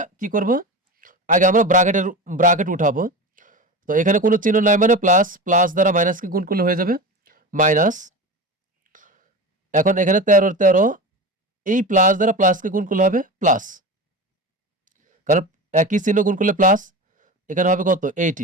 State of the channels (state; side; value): normal; both; correlation 0.27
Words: কি করব, আগে আমরা ব্র্যাকেট উঠাবো। তো এখানে কোনো চিহ্ন নাই মানে প্লাস, প্লাস দ্বারা মাইনাসকে গুণ করলে হয়ে যাবে মাইনাস। এখন এখানে 13 এই প্লাস দ্বারা প্লাসকে গুণ করলে হবে প্লাস, কারণ একই চিহ্ন গুণ করলে প্লাস। এখানে হবে কত?